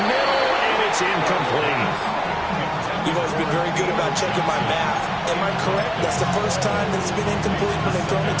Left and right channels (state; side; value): identical; both; correlation 1.00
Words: middle, and it's incomplete. You've always been very good about checking my math. Am I correct? That's the first time that it's been incomplete when they've thrown it